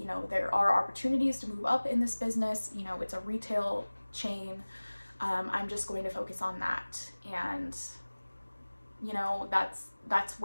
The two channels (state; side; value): inverted; both; correlation -1.00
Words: know, there are opportunities to move up in this business. You know, it's a retail chain. I'm just going to focus on that. And, you know, that's